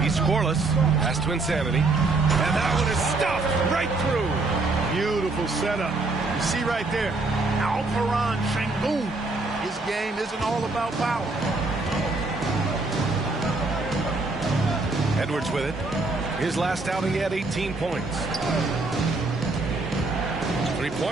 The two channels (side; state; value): left; quieter; 3.4 dB